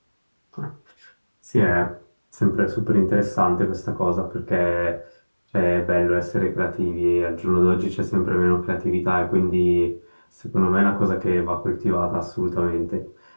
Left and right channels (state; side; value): inverted; both; correlation -1.00